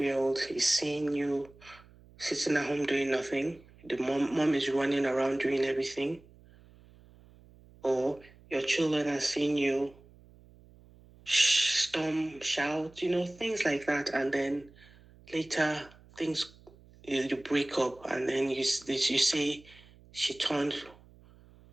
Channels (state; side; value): noise; right; hum, 25 dB below the sound